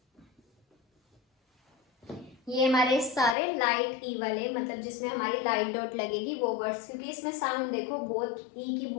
ये हमारे सारे लाइट ई वाले, मतलब जिसमें हमारी लाइट डॉट लगेगी वो वर्ड्स, क्योंकि इसमें साउंड देखो बहुत ई की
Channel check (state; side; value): drops out; right; at 3.4 s